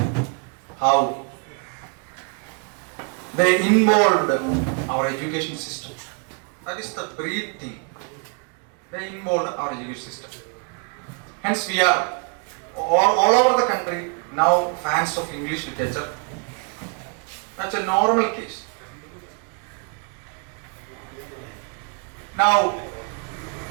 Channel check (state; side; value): quieter; left; 36.9 dB